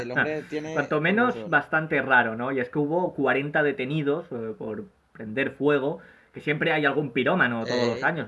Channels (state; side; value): identical; both; correlation 1.00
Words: el hombre tiene Cuanto menos, razón. bastante raro, ¿no? Y es que hubo 40 detenidos por prender fuego, que siempre hay algún pirómano todos los Eh, años,